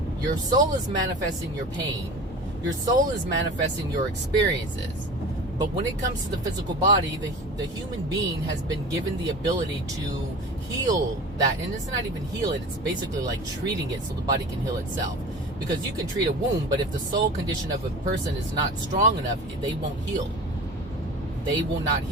Your soul is manifesting your pain. Your soul is manifesting your experiences. But when it comes to the physical body, the human being has been given the ability to heal that. And it's not even heal it. It's basically like treating it so the body can heal itself. Because you can treat a wound, but if the soul condition of a person is not strong enough, they won't heal. They will not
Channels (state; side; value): normal; both; correlation 0.36